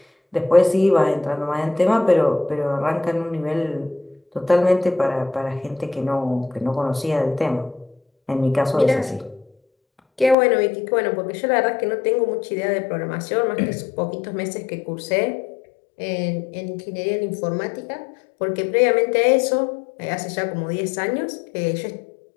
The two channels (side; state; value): right; drops out; at 10.4 s